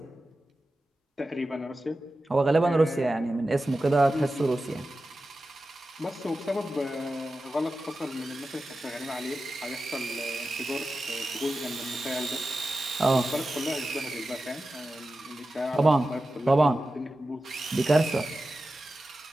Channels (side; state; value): both; normal; correlation 0.93